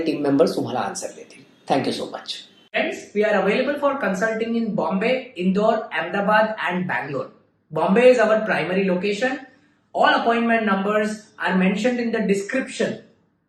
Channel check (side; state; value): both; identical; correlation 1.00